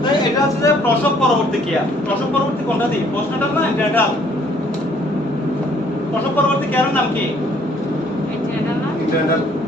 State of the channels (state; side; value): normal; both; correlation 0.62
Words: তাই এটা হচ্ছে যে প্রসব পরবর্তী কেয়ার। প্রসব পরবর্তী কোনটা দিই, পোস্টনেটাল না অ্যান্টিনেটাল? প্রসব পরবর্তী কেয়ারের নাম কি?